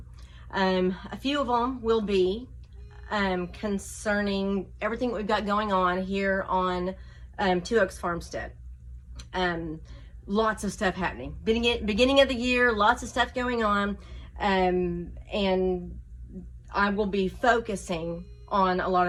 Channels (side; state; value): both; identical; correlation 1.00